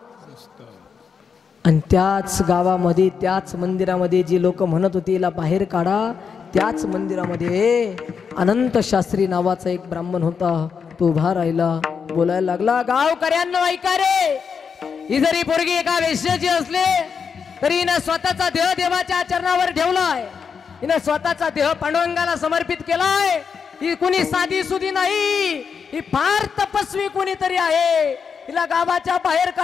आणि त्याच गावामध्ये, त्याच मंदिरामध्ये जे लोक म्हणत होते याला बाहेर काढा, त्याच मंदिरामध्ये अनंत शास्त्री नावाचा एक ब्राह्मण होता. तो उभा राहिला, बोलायला लागला, गावकऱ्यांनो ऐका रे, ही जरी पोरगी एका वेश्याची असले तरी हिनं स्वतःचा देह देवाच्या चरणावर ठेवलाय. हिनं स्वतःचा देह पांडुरंगाला समर्पित केलाय. ही कुणी साधी सुधी नाही, ही फार तपस्वी कोणीतरी आहे. हिला गावाच्या बाहेर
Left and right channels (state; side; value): quieter; right; 6.2 dB